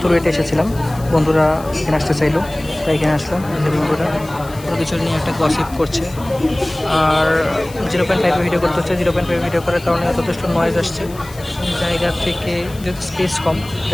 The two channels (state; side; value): noise; left; hiss, 20 dB below the sound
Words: রয়েতে এসেছিলাম, বন্ধুরা এখানে আসতে চাইলো তাই এখানে আসলাম। বন্ধুরা কোনো কিছু নিয়ে একটা গসিপ করছে, আর 0.5 ভিডিও করতে হচ্ছে। 0.5 ভিডিও করার কারণে যথেষ্ট নয়েজ আসছে জায়গা থেকে, যেহেতু স্পেস কম